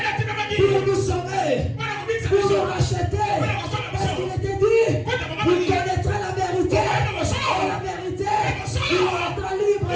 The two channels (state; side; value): identical; both; correlation 1.00